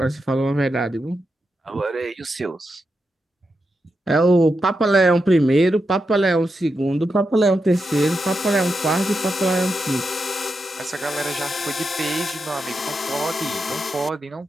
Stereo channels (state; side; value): normal; both; correlation 0.87